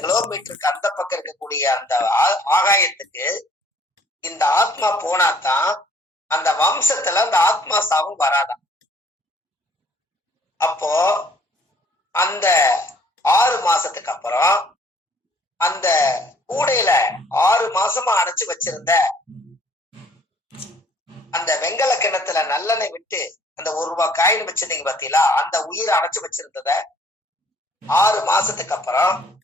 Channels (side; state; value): both; normal; correlation 0.60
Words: கிலோமீட்டருக்கு அந்த பக்கம் இருக்கக்கூடிய அந்த ஆகாயத்துக்கு இந்த ஆத்மா போனாதான் அந்த வம்சத்துல அந்த ஆத்மா சாவும் வராதான். அப்போ அந்த 6 மாசத்துக்கு அப்புறம் அந்த கூடையில 6 மாசமா அடைச்சு வச்சிருந்த அந்த வெங்கல கிணத்துல நல்லெண்ணெய் விட்டு அந்த 1 ரூபாய் காயின் வச்சிருந்தீங்க பாத்தீங்களா, அந்த உயிரை அடைச்சு வச்சிருந்தத 6 மாசத்துக்கு அப்புறம்